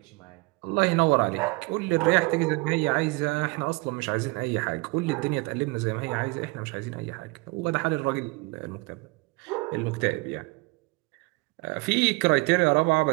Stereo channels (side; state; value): left; quieter; 26.6 dB